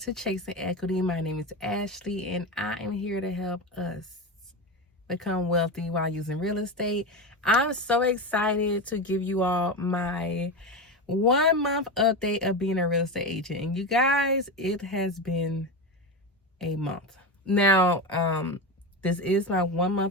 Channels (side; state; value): both; normal; correlation 0.19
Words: Chasing Equity. My name is Ashley, and I am here to help us become wealthy while using real estate. I'm so excited to give you all my 1 month update of being a real estate agent. And you guys, it has been a month. Now, this is my 1